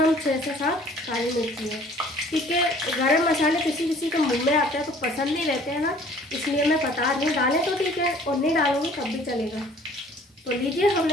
6 से 7 काली मिर्ची है। ठीक है, गरम मसाले किसी किसी के मुंह में आते हैं तो पसंद नहीं रहते हैं ना, इसलिए मैं बता रही हूँ। डालें तो ठीक है और नहीं डालूंगी तब भी चलेगा। तो लीजिए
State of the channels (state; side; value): normal; both; correlation 0.53